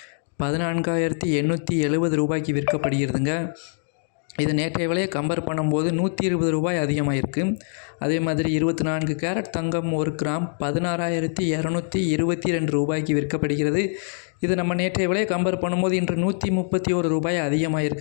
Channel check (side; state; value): right; silent; 63 dB below the other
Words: 14,870 ரூபாய்க்கு விற்கப்படுகிறதுங்க. இது நேற்றைய விலையை கம்பேர் பண்ணும்போது 120 ரூபாய் அதிகமாக இருக்குது. அதே மாதிரி 24 கேரட் தங்கம் 1 கிராம் 16,222 ரூபாய்க்கு விற்கப்படுகிறது. இது நம்ம நேற்றைய விலையை கம்பேர் பண்ணும்போது இன்று 131 ரூபாய் அதிகமாக